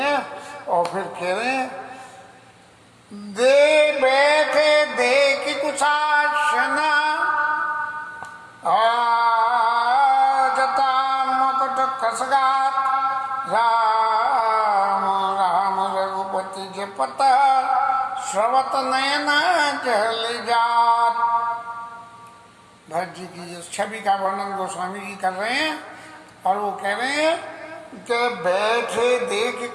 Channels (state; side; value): identical; both; correlation 1.00